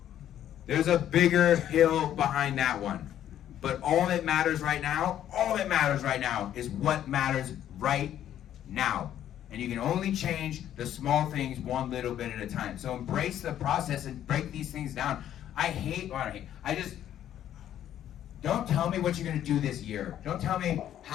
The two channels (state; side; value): quieter; right; 11.1 dB